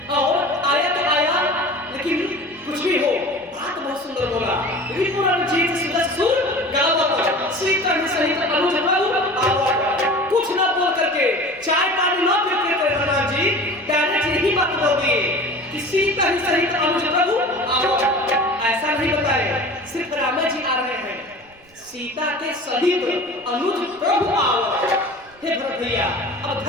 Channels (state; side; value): noise; right; rumble, 29 dB below the sound